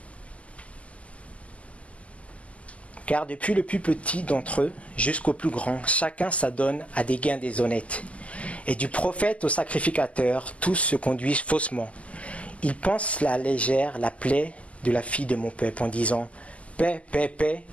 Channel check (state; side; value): late; right; 0.066 ms